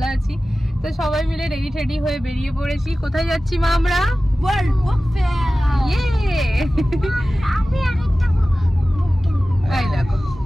আছি। তো সবাই মিলে রেডি হয়ে বেরিয়ে পড়েছি। কোথায় যাচ্ছি মা? আমরা ওয়ার্ল্ড বুক ফেয়ার। ইয়ে আমি আরেকটা বুক এই দেখো।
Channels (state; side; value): normal; both; correlation 0.96